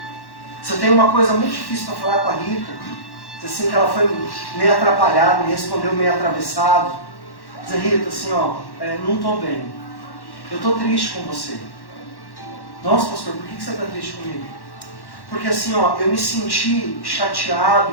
Se eu tenho uma coisa muito difícil para falar com a Rita, assim que ela foi meio atrapalhada, me respondeu meio atravessado. Dizer, Rita, assim, não estou bem. Eu estou triste com você. Nossa, pastor, por que você está triste comigo? Porque assim, eu me senti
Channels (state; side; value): late; right; 1.1 ms